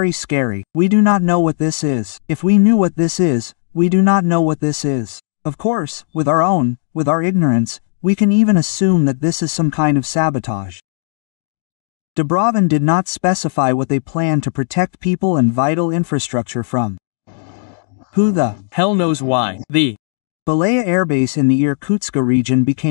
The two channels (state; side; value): silent; right; digital silence